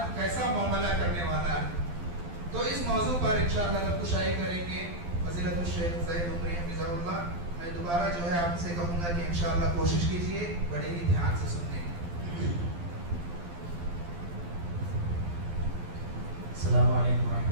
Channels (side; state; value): left; late; 12 ms